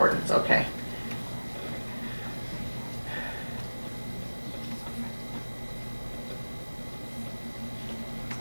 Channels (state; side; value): inverted; both; correlation -1.00